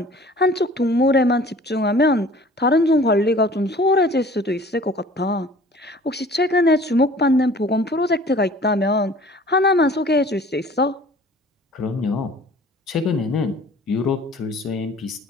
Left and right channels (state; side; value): normal; both; correlation 0.49